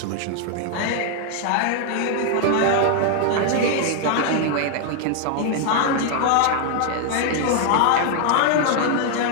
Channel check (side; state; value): both; different; correlation 0.00